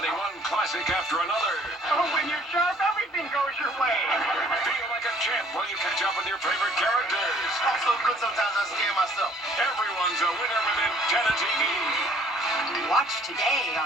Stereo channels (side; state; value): both; normal; correlation 0.59